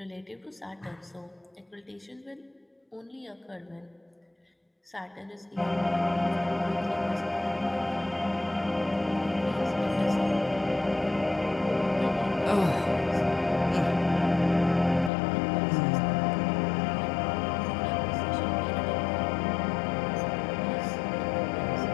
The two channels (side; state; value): right; drops out; at 15.1 s